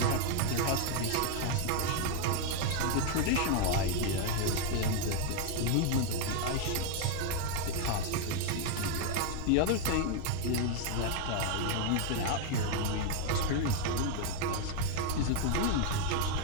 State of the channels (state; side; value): different; both; correlation 0.00